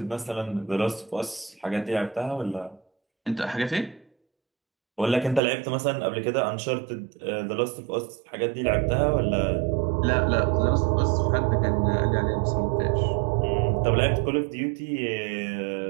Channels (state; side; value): drops out; left; at 5.4 s